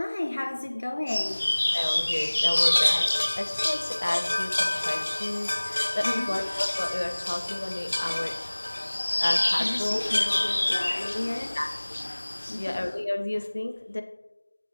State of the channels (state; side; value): inverted; both; correlation -1.00